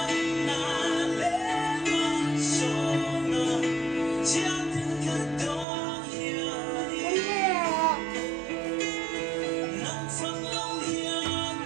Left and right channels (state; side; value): drops out; left; at 5.7 s